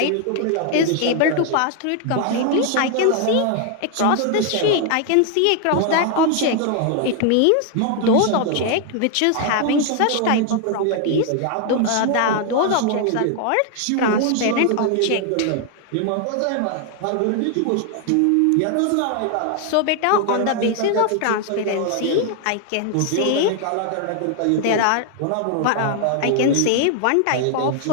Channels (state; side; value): different; both; correlation 0.00